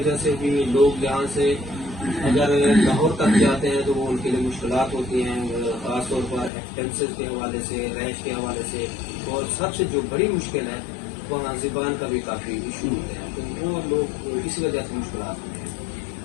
से भी लोग यहाँ से अगर लाहौर तक जाते हैं तो वो उनके लिए मुश्किलात होती हैं, खासतौर पर एक्सपेंसेस के हवाले से, रैश के हवाले से, और सबसे जो बड़ी मुश्किल है वहाँ ज़बान का भी काफी इशू होते हैं, तो वो लोग इसी वजह से मुश्किलात होते हैं।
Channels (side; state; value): right; drops out; at 6.5 s